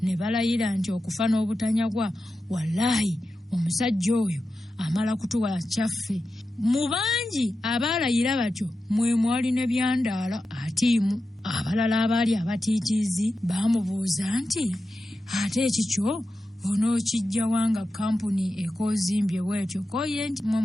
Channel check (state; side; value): normal; both; correlation 0.92